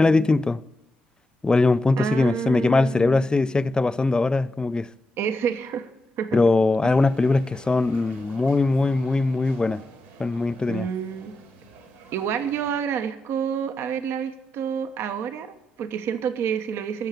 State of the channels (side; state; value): both; normal; correlation 0.87